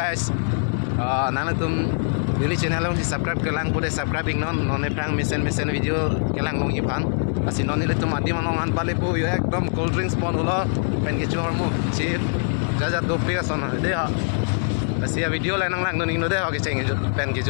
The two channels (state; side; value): silent; right; 63 dB below the other